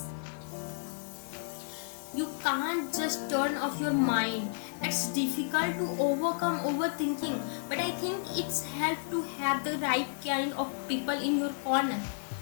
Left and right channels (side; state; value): right; silent; digital silence